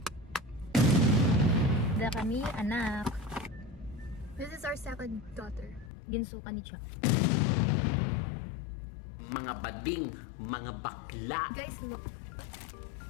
Da kami, anak. This is our second daughter. Ginsuka ni Cha. Mga bading, mga bakla. Guys, look.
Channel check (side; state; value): right; drops out; at 5.9 s